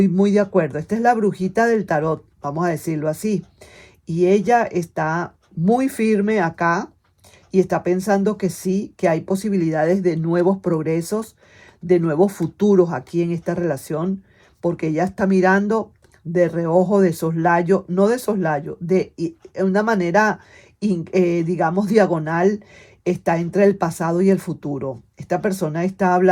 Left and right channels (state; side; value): identical; both; correlation 1.00